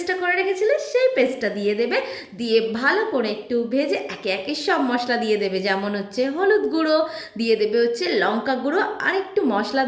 করে রেখেছিলে সেই পেস্টটা দিয়ে দেবে। দিয়ে ভালো করে একটু ভেজে একে একে সব মশলা দিয়ে দেবে, যেমন হচ্ছে হলুদ গুঁড়ো দিয়ে দেবে, হচ্ছে লঙ্কা গুঁড়ো আর একটু মশলা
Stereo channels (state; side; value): identical; both; correlation 1.00